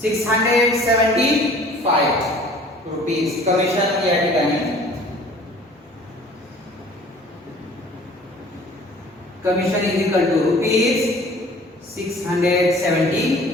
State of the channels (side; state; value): both; normal; correlation 0.50